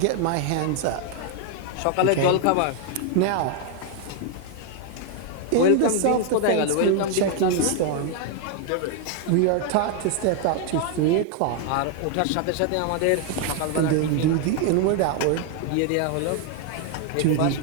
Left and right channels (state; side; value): different; both; correlation 0.01